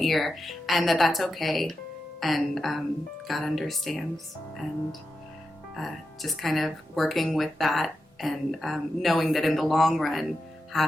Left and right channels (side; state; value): both; normal; correlation 0.89